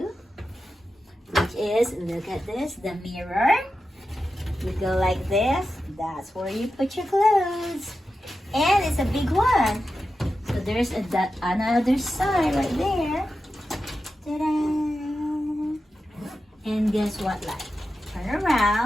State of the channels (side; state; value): both; normal; correlation 0.91